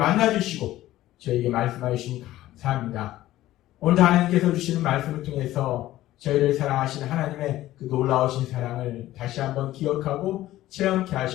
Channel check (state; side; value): quieter; right; 15.0 dB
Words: 저희에게 말씀해 주시니 감사합니다. 오늘도 하나님께서 주시는 말씀을 통해서 저희를 사랑하신 하나님의 그 놀라우신 사랑을 다시 한번 기억하고 체험케